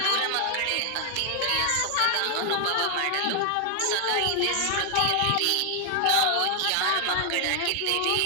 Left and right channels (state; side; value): different; both; correlation 0.00